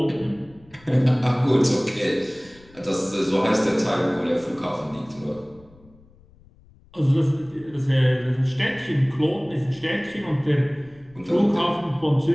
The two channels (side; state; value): left; noise; rumble, 27 dB below the sound